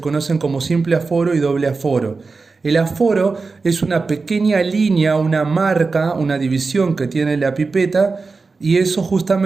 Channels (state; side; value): quieter; left; 4.2 dB